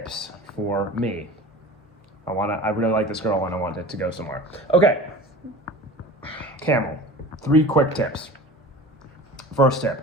for me? I really like this girl and I want it to go somewhere. Okay, Camel, 3 quick tips. First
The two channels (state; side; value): normal; both; correlation 0.37